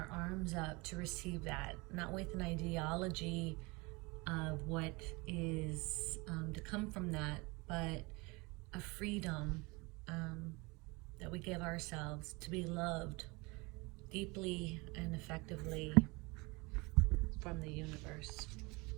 arms up to receive that, not with an ideology of what is to come from that, but a freedom that we give ourselves to be loved deeply and effectively from the universe.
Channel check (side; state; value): left; quieter; 25.9 dB